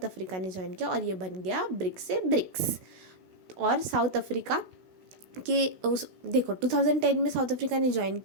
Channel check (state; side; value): late; left; 16 ms